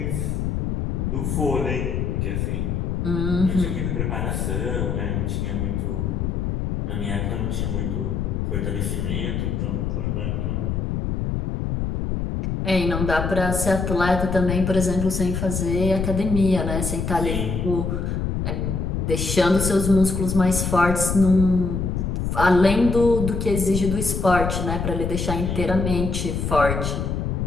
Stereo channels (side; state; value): left; noise; rumble, 1 dB below the sound